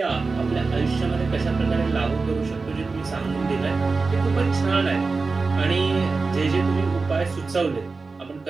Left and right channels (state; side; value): quieter; left; 4.1 dB